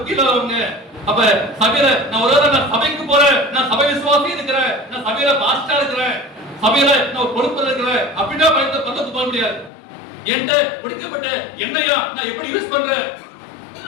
இல்லாதவங்க. அப்ப சபையில நான் ஒரு சபைக்கு போறேன், நான் சபை விசுவாசி இருக்கிறேன், நான் சபையில பாஸ்டா இருக்கிறேன், சபையில நான் பொறுப்பு இருக்கிறேன் அப்படின்னா பக்கத்துக்கு போக முடியாது. என்கிட்ட முடிக்கப்பட்ட எண்ணெயா நான் எப்படி யூஸ் பண்றேன்?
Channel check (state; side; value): drops out; right; at 9.7 s